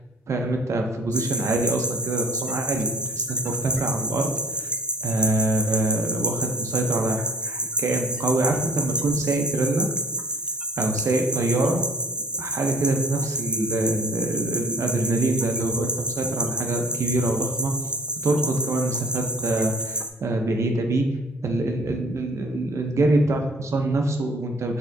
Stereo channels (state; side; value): normal; both; correlation 0.52